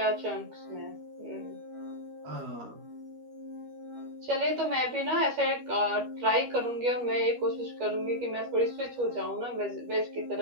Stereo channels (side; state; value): left; late; 13 ms